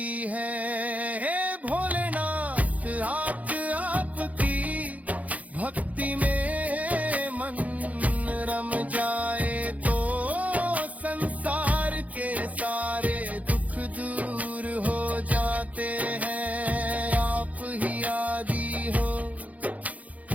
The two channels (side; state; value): left; late; 0.072 ms